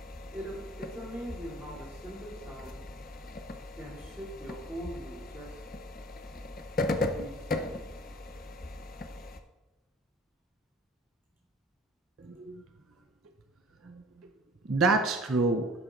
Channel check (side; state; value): both; normal; correlation 0.48